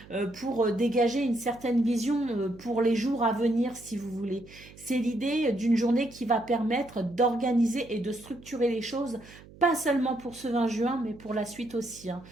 pour dégager une certaine vision pour les jours à venir, si vous voulez. C'est l'idée d'une journée qui va permettre d'organiser et de structurer les choses pas seulement pour ce 20 juin, mais pour la suite aussi. Hein.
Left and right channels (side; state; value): right; noise; hum, 21 dB below the sound